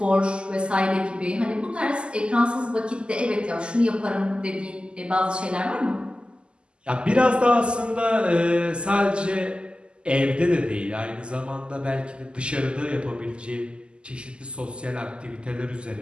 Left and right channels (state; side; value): late; left; 0.050 ms